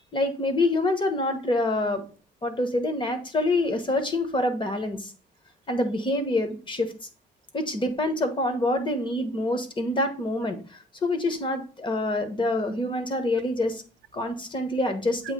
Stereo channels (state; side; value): normal; both; correlation 0.59